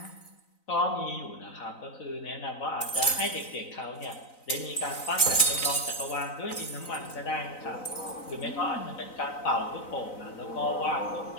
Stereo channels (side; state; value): right; late; 4.0 ms